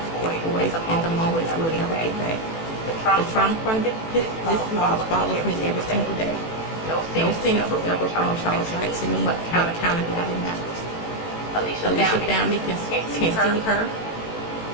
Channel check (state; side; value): late; right; 18 ms